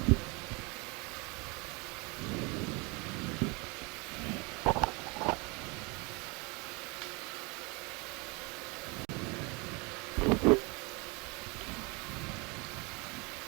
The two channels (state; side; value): quieter; left; 28.7 dB